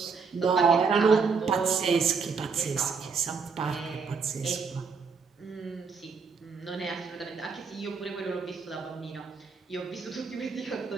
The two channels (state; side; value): quieter; left; 5.2 dB